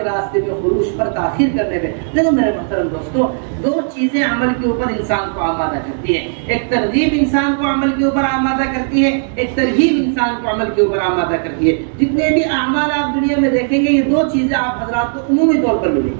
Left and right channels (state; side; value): silent; left; digital silence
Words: راستے میں خروج پر تاخیر کرنے میں. دیکھو میرے محترم دوستو, دو چیزیں عمل کے اوپر انسان کو آمادہ کرتی ہیں. ایک ترغیب انسان کو عمل کے اوپر آمادہ کرتی ہے, ایک ترغیب انسان کو عمل کے اوپر آمادہ کرتی ہے. جتنے بھی اعمال آپ دنیا میں دیکھیں گے یہ دو چیزیں آپ حضرات کو عمومی طور پر ملیں